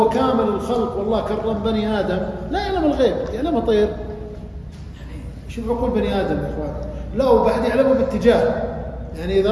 كامل الخلق، والله كرم بني آدم، لا يعلم الغيب، يعلم طير. شوف عقول بني آدم يا إخوان، لا وبعد يعلمه باتجاه، يعني إذا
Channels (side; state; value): both; identical; correlation 1.00